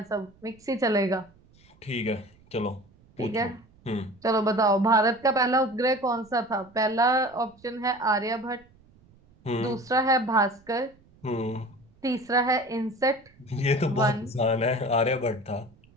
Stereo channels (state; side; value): noise; right; rumble, 29 dB below the sound